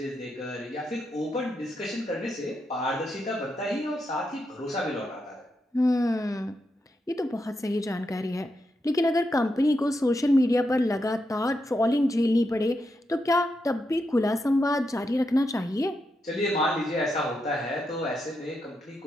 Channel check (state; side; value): normal; both; correlation 0.84